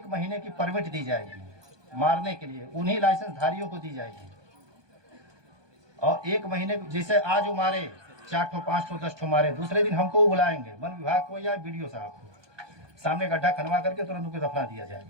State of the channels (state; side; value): late; left; 1.2 ms